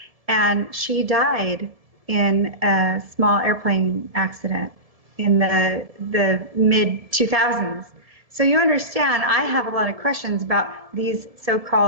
and she died in a small airplane accident in the mid-2000s. So you understand, I have a lot of questions about these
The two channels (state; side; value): late; left; 1.7 ms